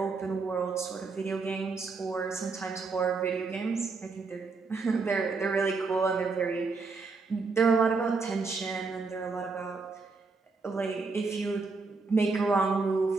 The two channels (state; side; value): quieter; left; 4.3 dB